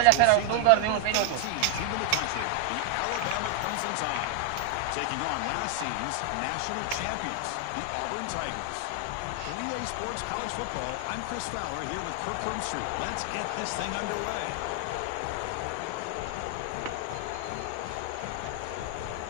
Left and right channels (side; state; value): both; different; correlation 0.00